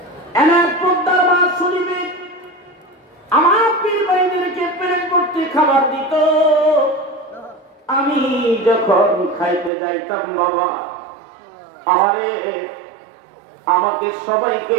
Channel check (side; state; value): left; drops out; at 9.7 s